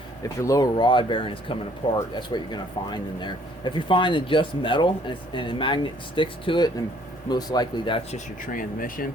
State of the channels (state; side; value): normal; both; correlation 0.61